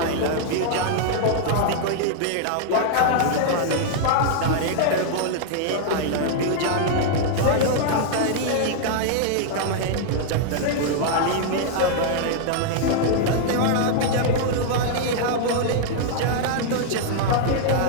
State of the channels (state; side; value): different; both; correlation -0.01